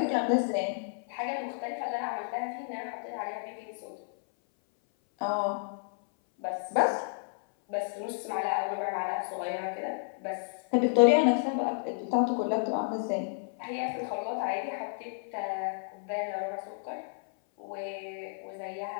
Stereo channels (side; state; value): right; silent; 57 dB below the other